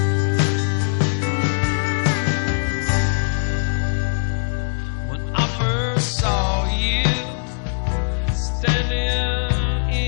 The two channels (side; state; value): right; silent; digital silence